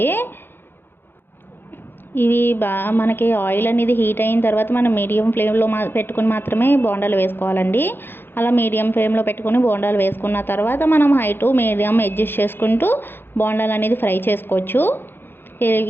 ఇవి మనకి ఆయిల్ అనేది హీట్ అయిన తర్వాత మనం మీడియం ఫ్లేమ్లో పెట్టుకుని మాత్రమే బోండాలు వేసుకోవాలండి. అలా మీడియం ఫ్లేమ్లో పెట్టుకుని బోండాలు వేసుకున్న తర్వాత మనం హై టు మీడియం అడ్జస్ట్ చేసుకుంటూ బోండాలు అనేది ఫ్రై చేసుకోవచ్చు.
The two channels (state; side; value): late; right; 0.10 ms